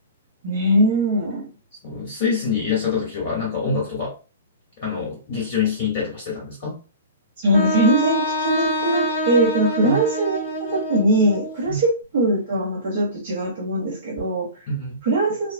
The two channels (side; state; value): both; inverted; correlation -0.35